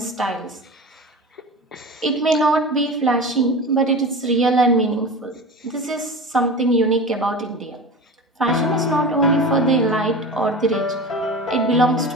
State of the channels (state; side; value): normal; both; correlation 0.31